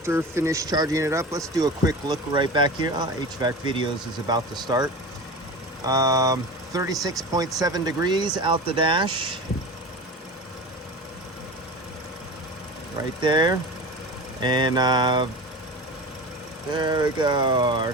finished charging it up, let's do a quick look right back here. HVAC videos is about to start. 36.7 degrees out the dash. Right there. And there we go, our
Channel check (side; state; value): both; normal; correlation 0.31